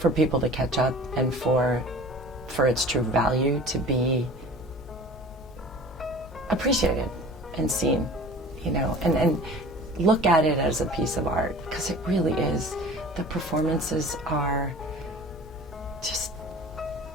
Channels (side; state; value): both; normal; correlation 0.42